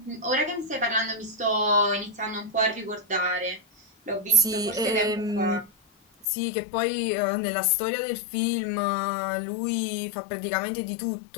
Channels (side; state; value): right; drops out; at 6.2 s